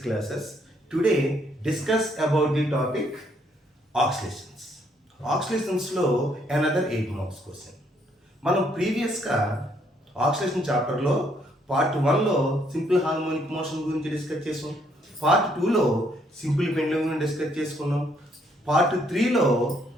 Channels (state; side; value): normal; both; correlation 0.70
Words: classes. Today, discuss about the topic oscillations. Oscillations లో another 8 marks question. మనం ప్రీవియస్గా ఆక్సిలేషన్ చాప్టర్లో part 1లో సింపుల్ హార్మోనిక్ మోషన్ గురించి డిస్కస్ చేసాం. పార్ట్ 2లో సింపుల్ పెండ్యులమ్ గురించి డిస్కస్ చేసుకున్నాం. పార్ట్ 3లో